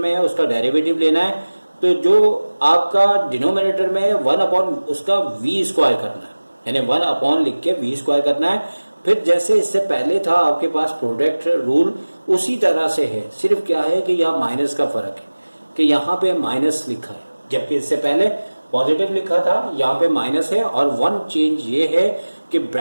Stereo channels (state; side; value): inverted; both; correlation -1.00